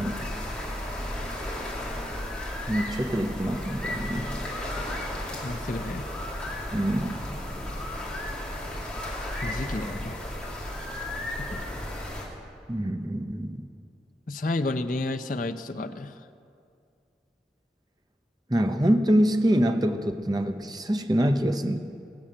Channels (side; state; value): both; normal; correlation 0.87